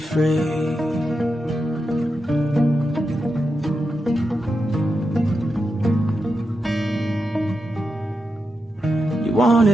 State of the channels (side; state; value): both; normal; correlation 0.88